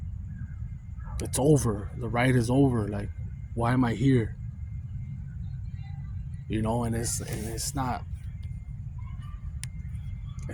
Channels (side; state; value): both; identical; correlation 1.00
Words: it's over. The ride is over. Like, why am I here? And it's not.